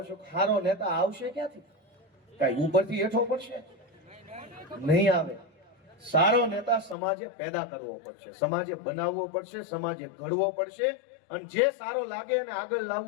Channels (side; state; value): right; drops out; at 7.0 s